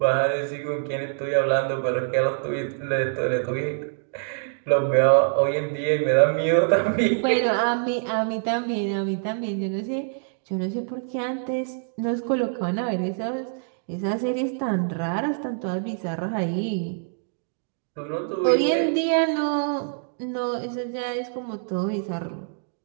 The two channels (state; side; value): silent; left; digital silence